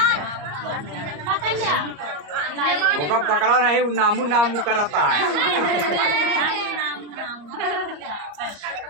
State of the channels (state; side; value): late; left; 34 ms